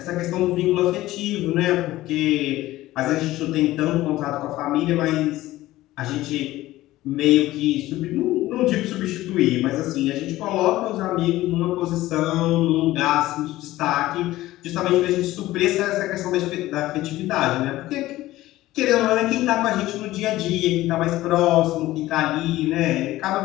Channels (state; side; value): quieter; right; 16.4 dB